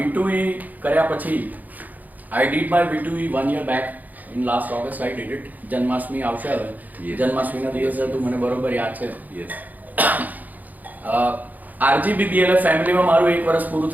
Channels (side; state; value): left; late; 0.081 ms